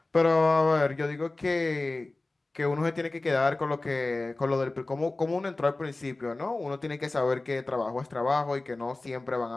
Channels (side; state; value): right; quieter; 3.1 dB